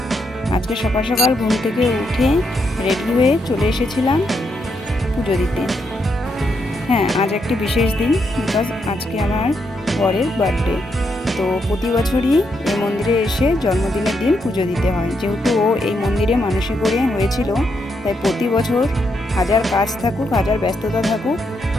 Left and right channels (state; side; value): normal; both; correlation 0.79